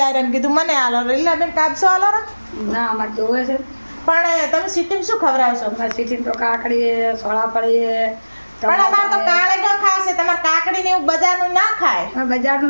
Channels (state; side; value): inverted; both; correlation -1.00